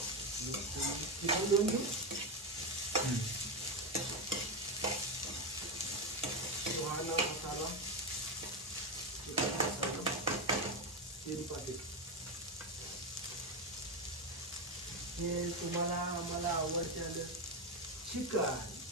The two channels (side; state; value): both; normal; correlation 0.09